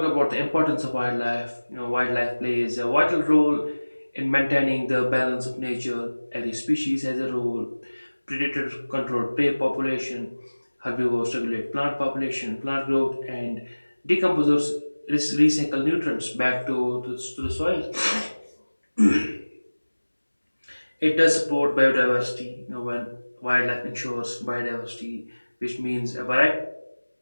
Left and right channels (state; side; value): inverted; both; correlation -1.00